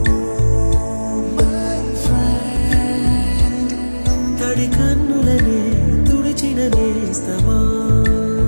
కన్నులనే తుడిచిన నేస్తమా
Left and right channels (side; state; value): both; inverted; correlation -1.00